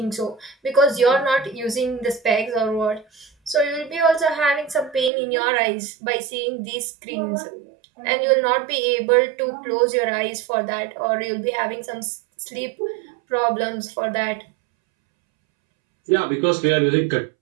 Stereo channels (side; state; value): left; drops out; at 5.1 s